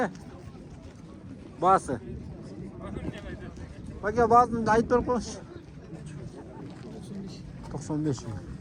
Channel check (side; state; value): both; identical; correlation 1.00